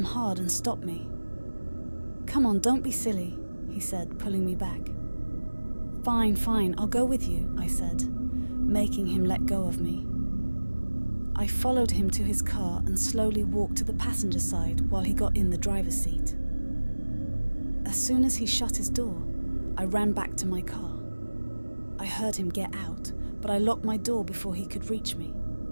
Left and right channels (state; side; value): inverted; both; correlation -1.00